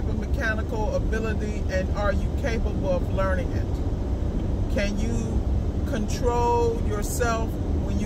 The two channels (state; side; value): identical; both; correlation 1.00